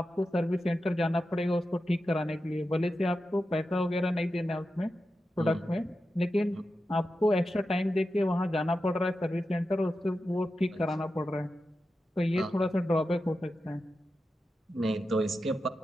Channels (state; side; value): normal; both; correlation 0.91